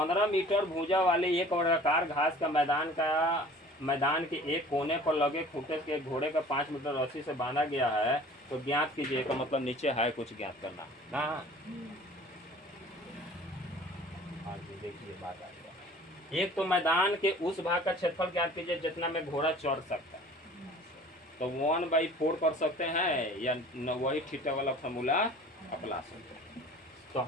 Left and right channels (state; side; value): normal; both; correlation 0.47